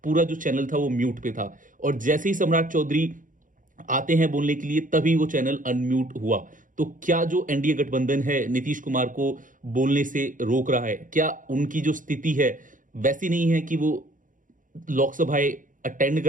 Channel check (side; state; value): left; late; 0.38 ms